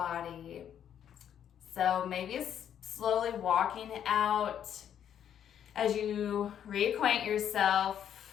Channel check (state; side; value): quieter; right; 9.4 dB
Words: So maybe it's slowly walking out as you reacquaint